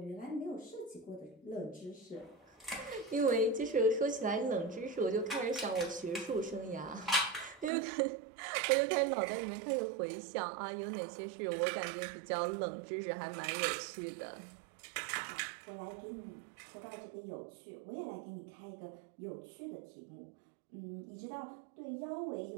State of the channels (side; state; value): left; drops out; at 7.7 s